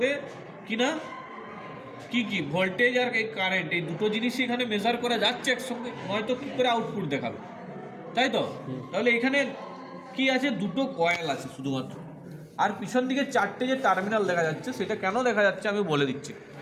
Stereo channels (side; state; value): both; identical; correlation 1.00